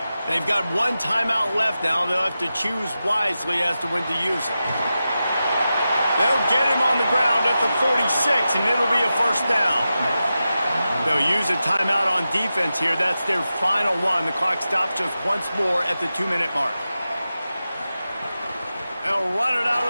They've got 1 timeout left now. They'll have to choose wisely as to when to use it. They'll get him on the ground at the 46, and it'll be a 1st down. They'll use a timeout on defense here. That's their final one. The clock stops just once more at the 2-minute mark. They'll run it out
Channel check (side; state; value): both; inverted; correlation -0.92